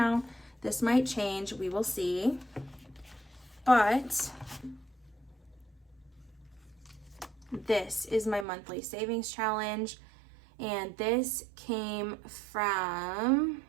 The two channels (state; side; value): drops out; left; at 8.5 s